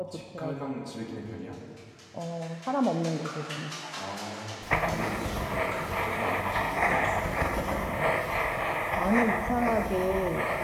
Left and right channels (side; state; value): both; identical; correlation 1.00